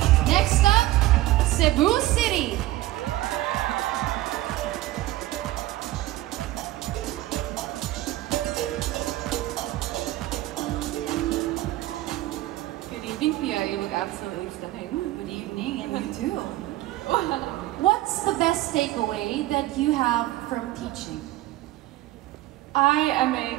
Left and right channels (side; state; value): left; quieter; 16.4 dB